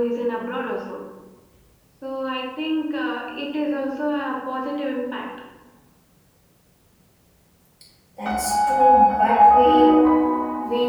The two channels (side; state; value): both; identical; correlation 1.00